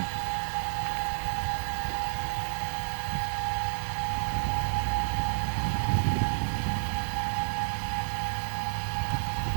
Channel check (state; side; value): silent; left; digital silence